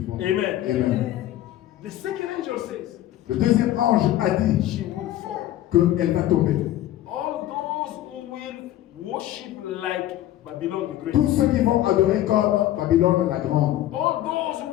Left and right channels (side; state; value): right; quieter; 13.7 dB